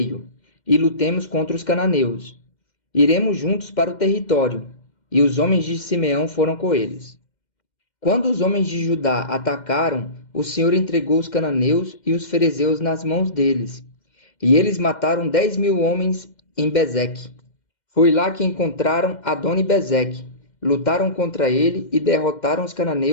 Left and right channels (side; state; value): right; late; 2.1 ms